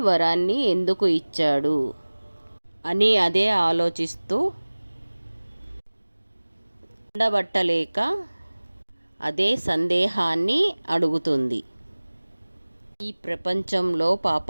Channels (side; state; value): both; inverted; correlation -1.00